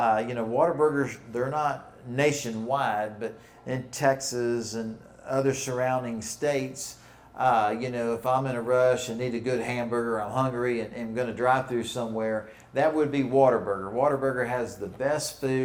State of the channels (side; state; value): both; identical; correlation 1.00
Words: You know, Whataburgers, they're not nationwide, but in Texas and other surrounding states, you know, if I'm in a rush and need a good hamburger, I'm hungry and I'm going to drive through somewhere, that would be Whataburger. Whataburger has the best